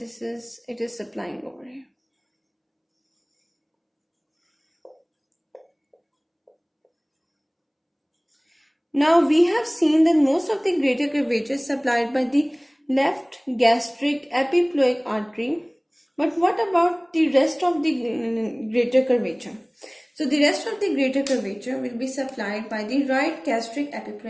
it is supplying over here. Now we have seen that most of the greater curvature is supplied by the left gastric epiploic artery. But what about the rest of the greater curvature? So the rest of the greater curvature will be supplied by the right gastric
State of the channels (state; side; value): identical; both; correlation 1.00